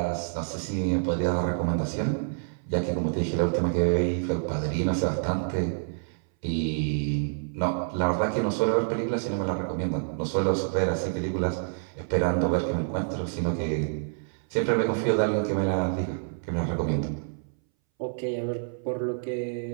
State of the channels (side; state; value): left; silent; 60 dB below the other